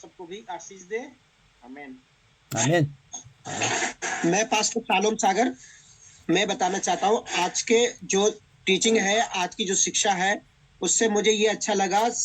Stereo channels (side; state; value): both; identical; correlation 1.00